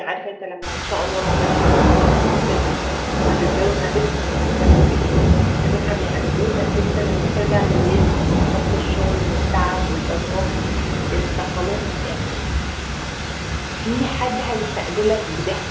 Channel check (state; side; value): identical; both; correlation 1.00